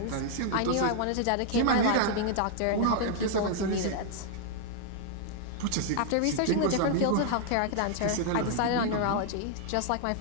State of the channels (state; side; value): different; both; correlation 0.00